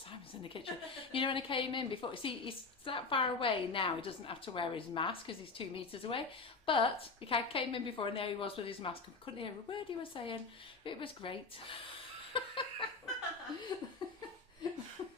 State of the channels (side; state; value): right; quieter; 4.2 dB